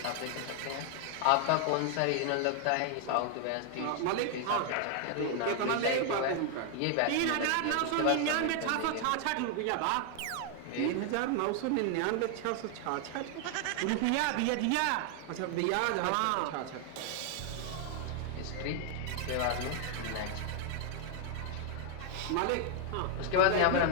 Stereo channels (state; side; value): different; both; correlation 0.00